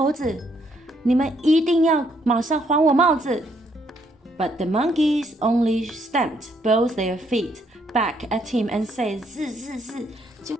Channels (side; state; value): both; normal; correlation 0.71